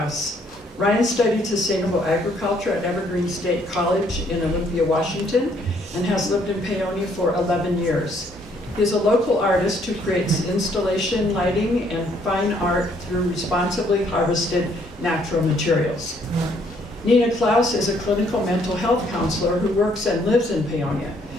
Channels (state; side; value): normal; both; correlation 0.66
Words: Ryan studied sustainable agriculture at Evergreen State College in Olympia, Washington, and has lived in Paonia for 11 years. He is a local artist who creates installation, lighting, and fine art through responsibly harvested natural materials. Nina Klaus is a clinical mental health counselor who works and lives in Paonia.